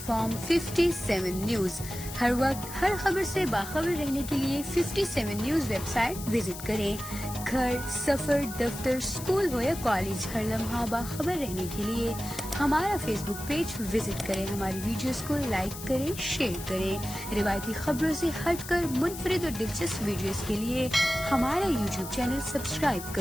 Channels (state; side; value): noise; left; hiss, 11 dB below the sound